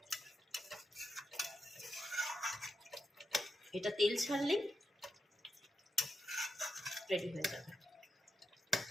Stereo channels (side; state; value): both; normal; correlation 0.86